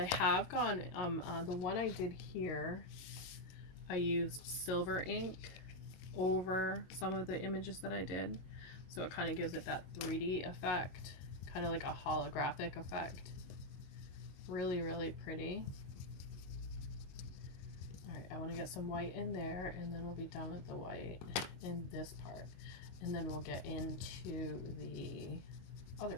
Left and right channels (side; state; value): right; late; 22 ms